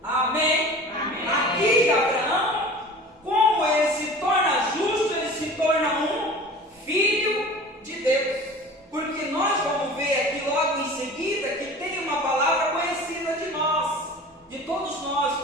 amém? Amém. Aqui Abraão, como ele se torna justo, ele se torna um filho de Deus. Porque nós vamos ver aqui logo em seguida que tem uma palavra conhecida de nós, de todos nós,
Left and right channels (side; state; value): both; normal; correlation 0.40